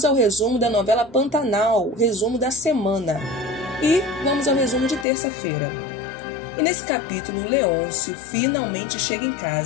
ao resumo da novela Pantanal, resumo da semana. E vamos ao resumo de terça-feira. E nesse capítulo, o Leôncio finalmente chega em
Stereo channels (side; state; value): right; drops out; at 5.1 s